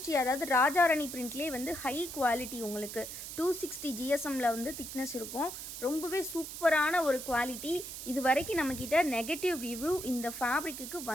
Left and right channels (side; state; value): right; noise; hiss, 9 dB below the sound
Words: அதாவது ராஜாராணி பிரிண்ட்லேயே வந்து ஹை குவாலிட்டி, உங்களுக்கு 260 GSMல வந்து திக்னஸ் இருக்கும். ரொம்பவே சூப்பரான ஒரு குவாலிட்டி. இது வரைக்கும் நம்மக்கிட்ட நெகட்டிவ் ரிவ்யூ இந்த ஃபேப்ரிக்கு